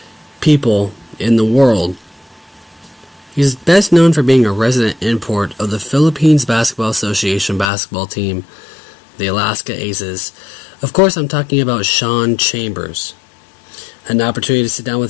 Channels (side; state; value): right; drops out; at 7.7 s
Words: people in the world. He's best known for being a resident import of the Philippines Basketball Association basketball team, the Alaska Aces. Of course, I'm talking about Shawn Chambers. Had an opportunity to sit down